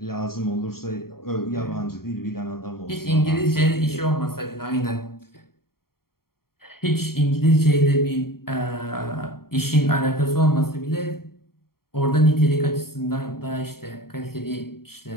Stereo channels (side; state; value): right; late; 0.93 ms